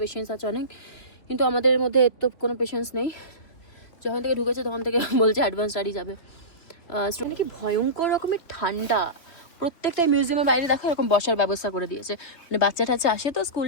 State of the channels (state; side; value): late; right; 3.3 ms